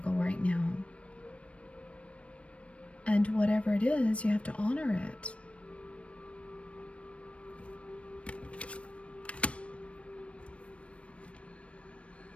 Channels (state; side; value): late; right; 0.062 ms